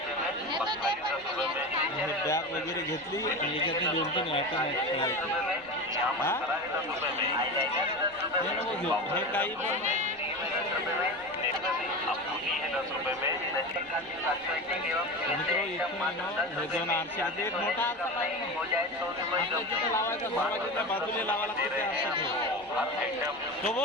बॅग वगैरे घेतली आणि याच्यातनी 2-3 आयटम आहेत। हे नको घेऊ, हे काही पण मित्रों इथून हे 2 आरसे आहेत। एक मोठा आरसा पाहिजे तिथे लावायचा, दरवाजाच्या बाजूला लावा लागते ते आरसे तो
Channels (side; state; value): right; noise; rumble, 29 dB below the sound